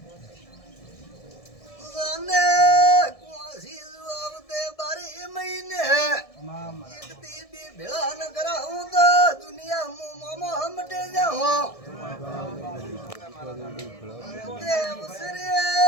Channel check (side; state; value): right; late; 1.6 ms